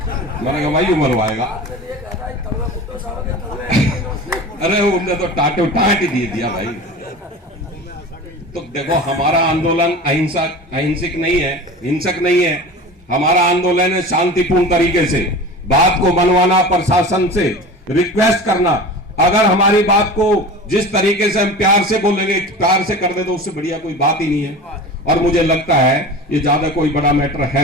मैंने कहा भाई मरवाएगा। अरे उनने तो टाटो टाट ही दे दिया भाई। तो देखो हमारा आंदोलन अहिंसक नहीं है, हिंसक नहीं है। हमारा आंदोलन है शांतिपूर्ण तरीके से बात को बनवाना, प्रशासन से रिक्वेस्ट करना। अगर हमारी बात को जिस तरीके से हम प्यार से बोलेंगे, प्यार से कर दे, तो उससे बढ़िया कोई बात ही नहीं है। और मुझे लगता है ये ज्यादा कोई बड़ा मैटर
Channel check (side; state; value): both; normal; correlation 0.34